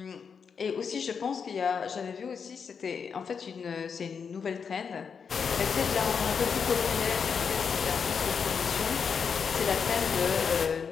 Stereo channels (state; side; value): quieter; right; 6.3 dB